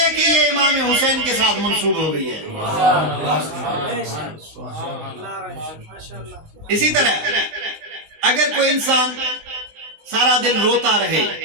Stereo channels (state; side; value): late; left; 19 ms